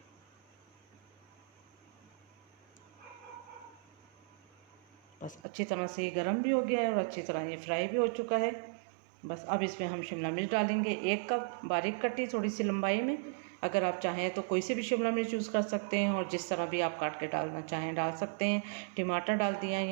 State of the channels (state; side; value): drops out; left; at 5.4 s